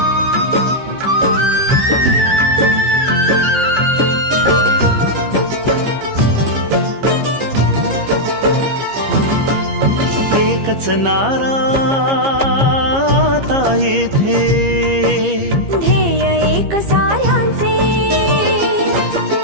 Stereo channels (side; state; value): left; late; 15 ms